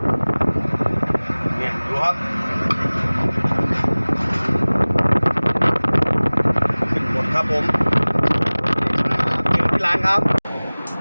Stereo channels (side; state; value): both; inverted; correlation -1.00